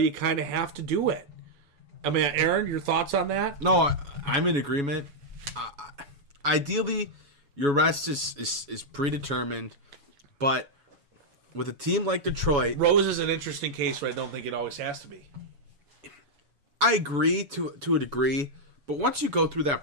kind of have to do it. I mean, Aaron, your thoughts on that? No, I'm in agreement. Ideally, your rest is predetermined, but with a team like Detroit... Rose is an interesting case where I don't think it always has to be. I agree to a degree, but once you go through that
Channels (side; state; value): left; late; 7.1 ms